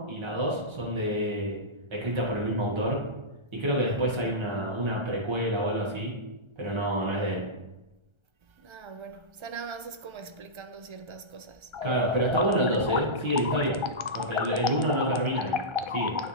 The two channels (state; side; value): late; left; 1.3 ms